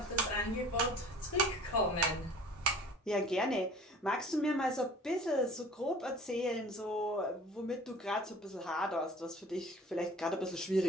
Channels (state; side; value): normal; both; correlation 0.46